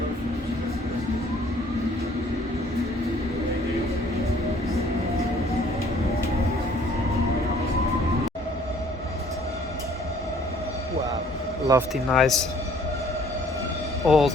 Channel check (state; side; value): normal; both; correlation 0.58